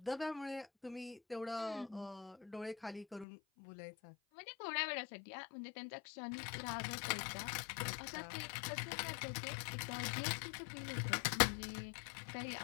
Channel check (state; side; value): drops out; right; at 3.2 s